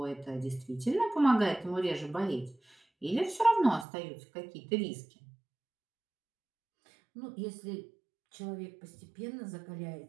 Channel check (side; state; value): left; drops out; at 3.9 s